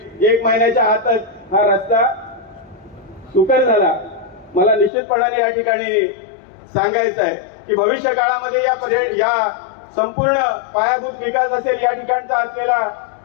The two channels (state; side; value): drops out; right; at 4.9 s